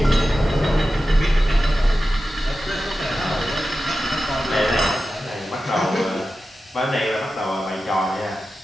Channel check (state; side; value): normal; both; correlation 0.93